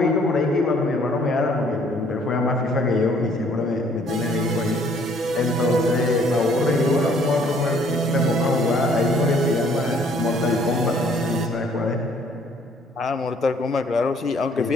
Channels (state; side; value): normal; both; correlation 0.61